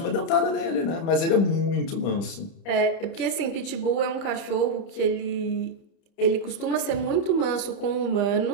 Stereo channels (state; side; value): late; right; 30 ms